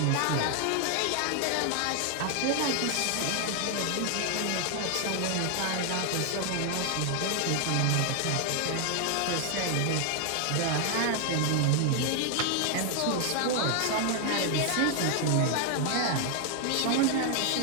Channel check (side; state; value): both; different; correlation 0.00